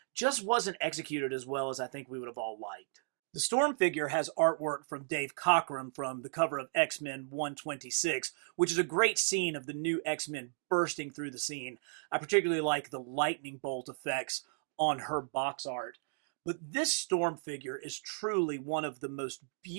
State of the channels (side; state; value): left; silent; digital silence